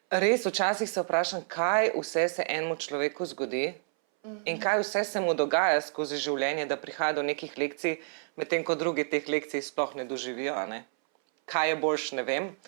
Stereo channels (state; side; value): silent; left; 58 dB below the other